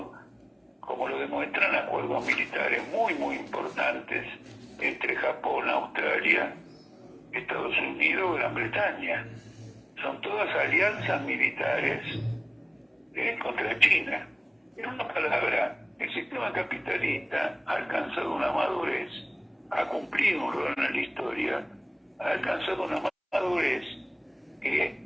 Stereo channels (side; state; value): both; identical; correlation 1.00